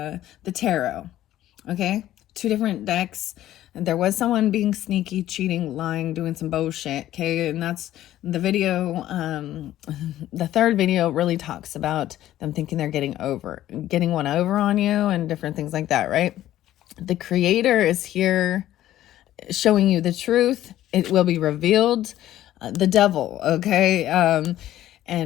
tarot. Okay. 2 different decks. There was someone being sneaky, cheating, lying, doing some bullshit. Okay. And that's the video. The third video really talks about them thinking they're getting one over on you and different things like that. Right. The creator is here showing you the truth. It will be revealed. The devil, okay?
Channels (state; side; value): quieter; right; 13.4 dB